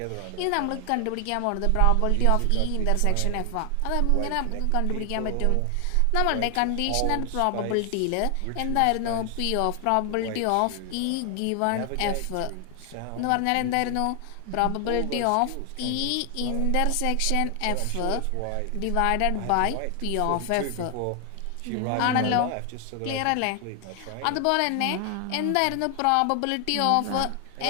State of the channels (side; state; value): both; different; correlation 0.00